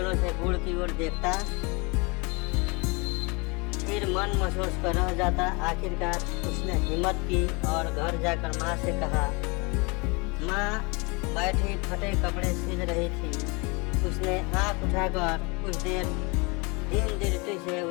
से गुड़ की ओर देखता, फिर मन महसूस कर रह जाता। आखिरकार उसने हिम्मत की और घर जाकर माँ से कहा। माँ बैठी फटे कपड़े सिल रही थी। उसने आँख उठाकर कुछ देर दीन दृष्टि से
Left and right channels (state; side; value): quieter; right; 28.8 dB